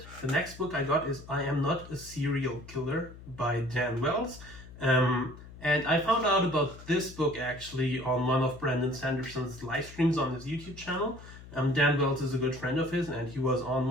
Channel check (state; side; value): noise; left; hum, 17 dB below the sound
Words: The next book I got is I Am Not a Serial Killer by Dan Wells. And I found out about this book actually on one of Brandon Sanderson's live streams on his YouTube channel. Dan Wells is a good friend of his, and he was on